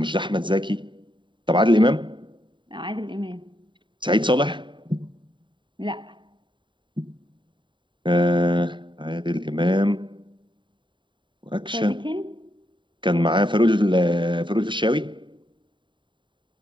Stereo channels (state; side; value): late; left; 0.23 ms